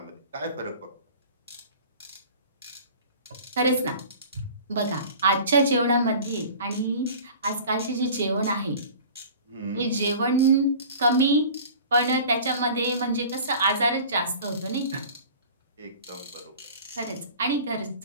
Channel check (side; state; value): both; inverted; correlation -0.42